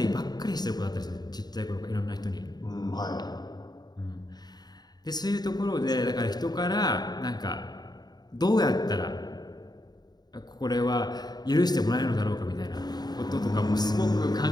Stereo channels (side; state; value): right; late; 0.20 ms